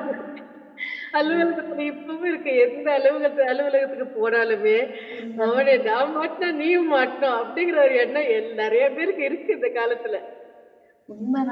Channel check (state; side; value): identical; both; correlation 1.00